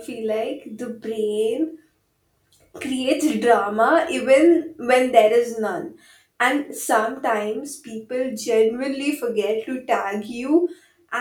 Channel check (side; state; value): both; identical; correlation 1.00